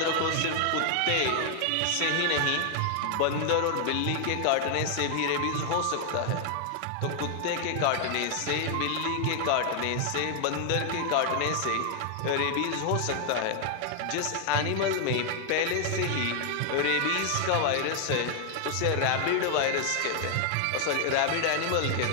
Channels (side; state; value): both; different; correlation 0.00